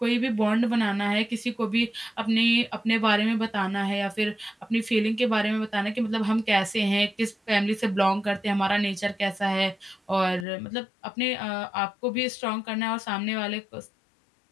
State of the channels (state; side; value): drops out; right; at 10.5 s